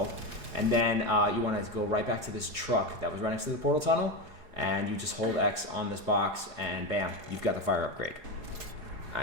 And then you want to go right back to this truck that was right next to the portal tunnel, and you just hold X on this box, and bam, you've got the fire upgrade.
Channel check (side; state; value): left; late; 4.8 ms